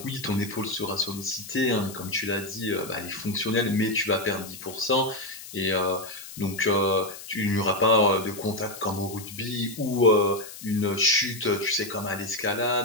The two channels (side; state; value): left; noise; hiss, 14 dB below the sound